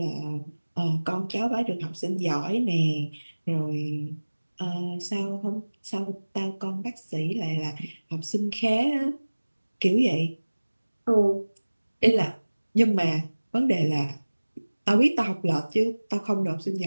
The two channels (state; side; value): inverted; both; correlation -1.00